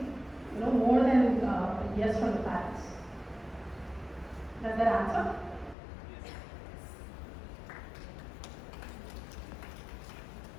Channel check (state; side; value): drops out; right; at 5.8 s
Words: more than yes from the parents. Does that answer?